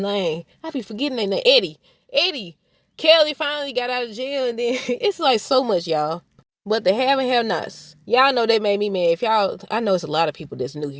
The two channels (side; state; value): both; identical; correlation 1.00